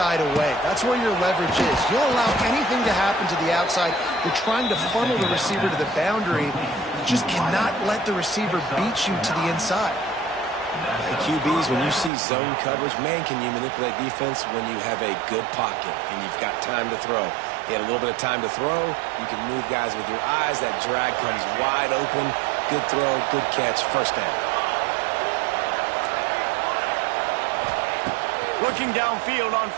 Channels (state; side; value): drops out; left; at 12.1 s